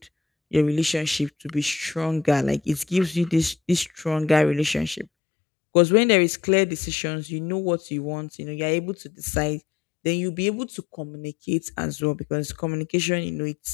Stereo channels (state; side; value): drops out; right; at 5.1 s